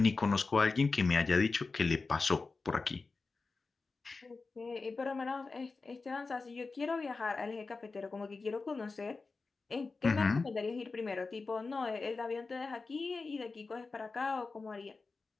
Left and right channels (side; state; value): right; quieter; 4.0 dB